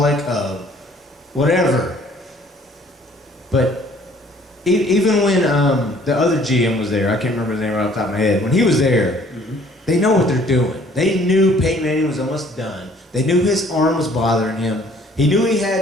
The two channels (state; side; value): normal; both; correlation 0.57